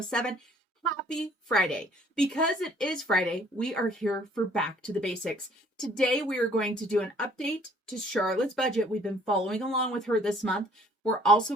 Happy Friday. Because it is Friday, we are here for Back to the Basics. Today we are going to do an update to Charlotte's budget. We've been following along with her this month. We're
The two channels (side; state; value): both; normal; correlation 0.58